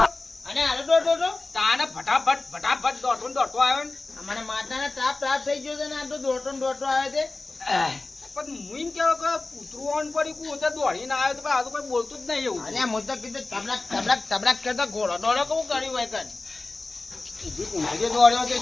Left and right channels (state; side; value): quieter; right; 3.3 dB